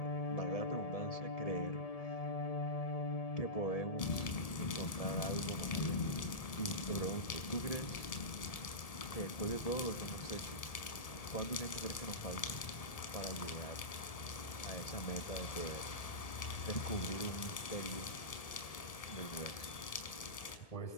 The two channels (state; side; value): late; right; 1.7 ms